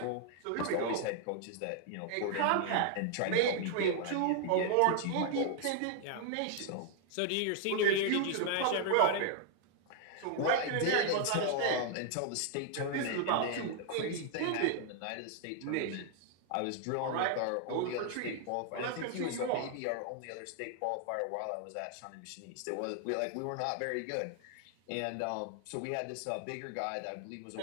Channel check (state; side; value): different; both; correlation 0.00